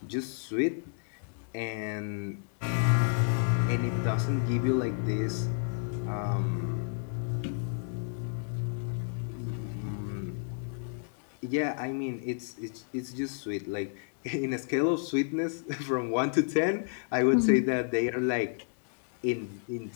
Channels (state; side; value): silent; right; digital silence